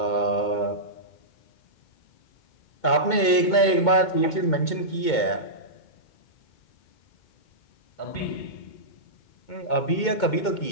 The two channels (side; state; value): right; late; 2.2 ms